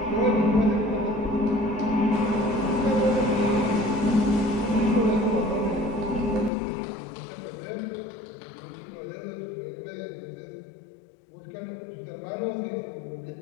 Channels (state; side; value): drops out; right; at 6.5 s